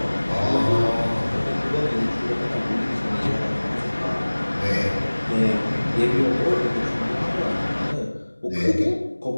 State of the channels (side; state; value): both; inverted; correlation -1.00